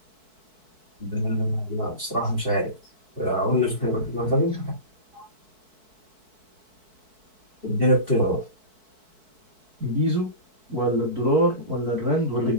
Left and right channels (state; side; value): late; left; 4.6 ms